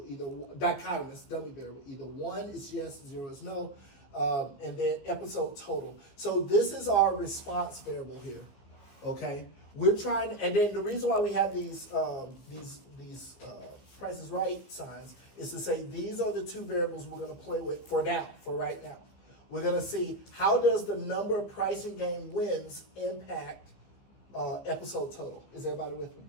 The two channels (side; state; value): right; late; 15 ms